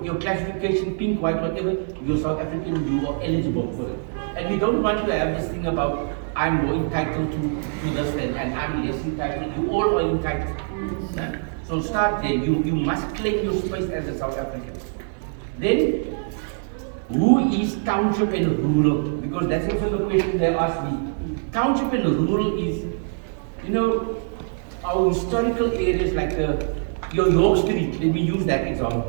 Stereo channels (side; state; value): left; silent; 63 dB below the other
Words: classification, pink, white, whatever, you're South African, you are eligible for it. And we don't want to have this thing about I'm more entitled to this and I'm less entitled. You all are entitled. Yeah? So start there. You must claim your space as a South African. Then, who is township and rural? Because that's also the question they asked me. Township and rural is, you know, our historical areas like your York Street, let me use that